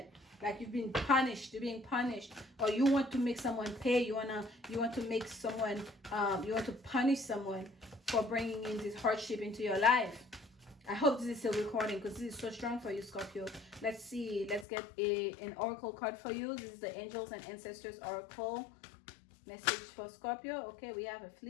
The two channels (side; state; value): right; drops out; at 14.7 s